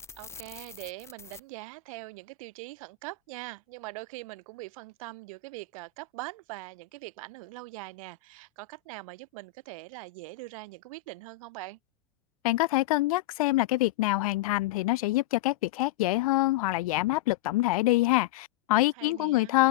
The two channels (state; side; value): quieter; right; 13.1 dB